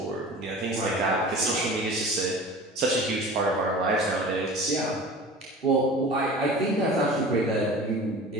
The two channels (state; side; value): normal; both; correlation 0.39